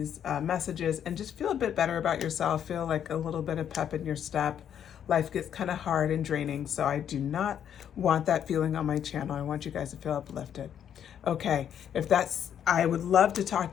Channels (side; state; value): right; quieter; 9.2 dB